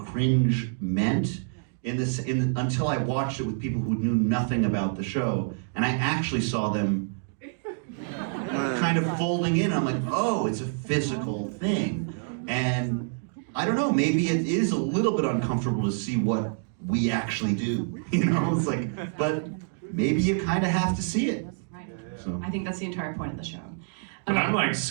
meant until I watched it with people who knew nothing about the show, and I actually saw them kind of folding in. I'm like, oh, it's a physical thing. And I don't know, maybe it is a little bit uncomfortable to see what we actually do, you know? It's like, but maybe you kind of have to see it. Right. So. I think that's the entire point of the show. But I'm like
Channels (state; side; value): silent; left; digital silence